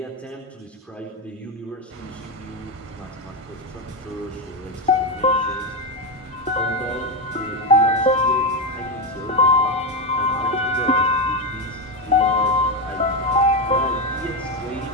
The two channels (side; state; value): both; normal; correlation 0.10